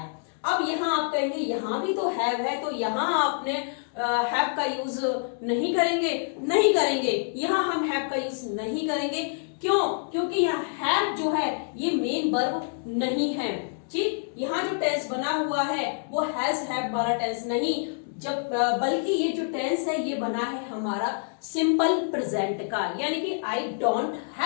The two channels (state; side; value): silent; right; digital silence